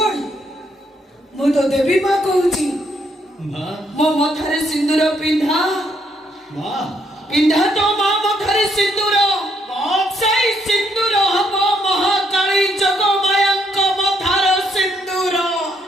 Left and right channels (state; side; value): normal; both; correlation 0.72